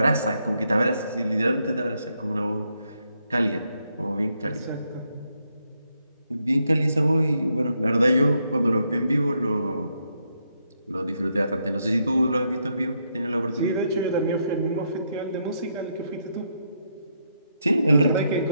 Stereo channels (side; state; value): both; inverted; correlation -0.78